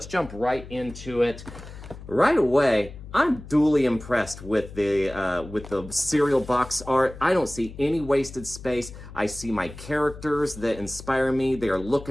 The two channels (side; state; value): left; noise; hum, 15 dB below the sound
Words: jump right into it. Right away, I'm duly impressed with the cereal box art. I don't see any wasted space. I see my characters that inspire me. They are